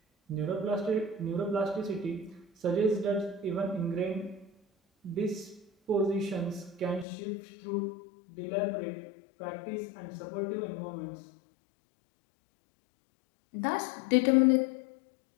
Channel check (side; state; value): right; drops out; at 7.1 s